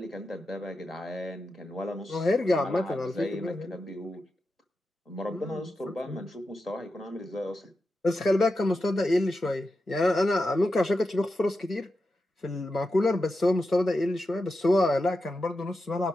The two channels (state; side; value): normal; both; correlation 0.89